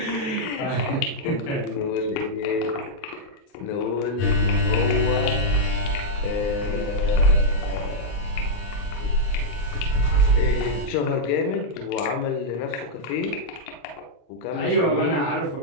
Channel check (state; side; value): late; right; 39 ms